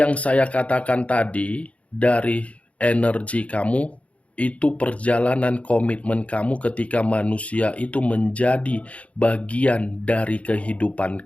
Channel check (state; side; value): late; right; 0.064 ms